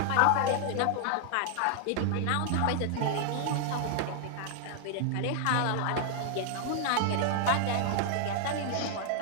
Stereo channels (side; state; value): both; different; correlation 0.00